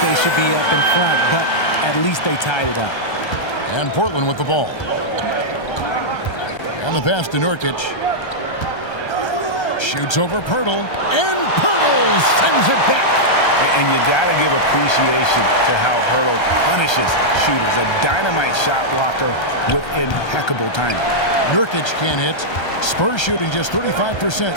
they should be up in front, but at least they tied it up. And Portland with the ball. And the pass to Nurkic. Shoots over Pirtle. And Pirtle sends it back. And you got to give appreciation to how Pirtle punishes shooters. A dynamite shot blocker with impeccable timing. Nurkic can't hit. Spurs shooting just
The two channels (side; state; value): right; late; 1.3 ms